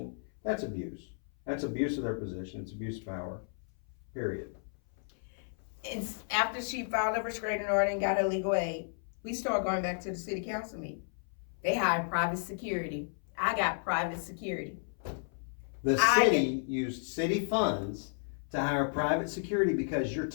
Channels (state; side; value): silent; right; 56 dB below the other